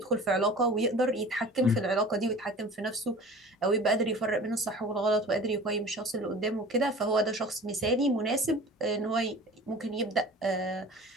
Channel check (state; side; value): normal; both; correlation 0.41